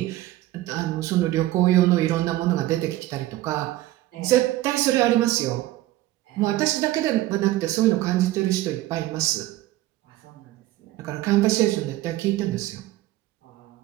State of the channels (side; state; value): left; quieter; 16.1 dB